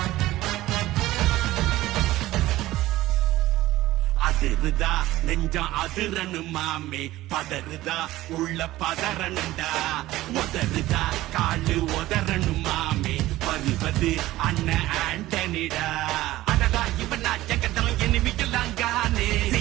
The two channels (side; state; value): left; quieter; 16.5 dB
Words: அதிருதா நெஞ்சம் அதிரனு மாமே பதறுதா உள்ள பதறனுண்டா உதறுதா காலு உதறனு மாமே வருவது அண்ணன் ஆண்டனிடா அடடா இவனா ஜெகதம் எனிமிக்கலாங்கானே